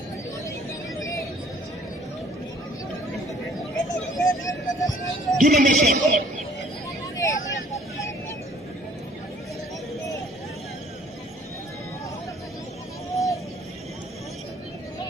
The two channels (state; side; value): normal; both; correlation 0.57